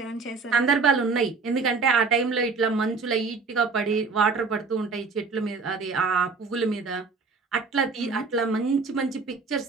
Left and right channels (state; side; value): quieter; left; 4.5 dB